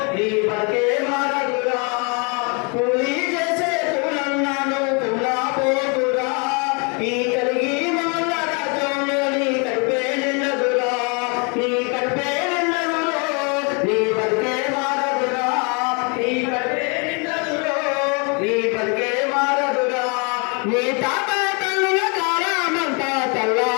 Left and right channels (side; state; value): right; quieter; 33.7 dB